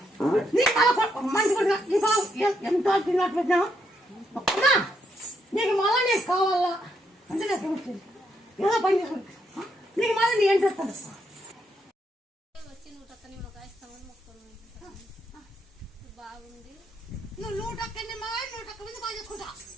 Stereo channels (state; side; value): normal; both; correlation 0.77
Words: నీకు మంచి కొడుకు నీ బాబు ఎంతో తిన్నట్టు పెట్టినావు నీకు మళ్ళా నీకు కావాలా అంటే నాకు ఏమొచ్చింది ఏదో పని చేసుకుంటా నీకు మళ్ళీ నీ ఏం చేస్తాను బాగుంది నువ్వు 100 నిమ్మకాయ 100 మంది బాగా చేసుకుంటా